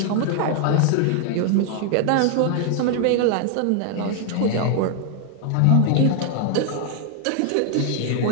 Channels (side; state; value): both; different; correlation 0.00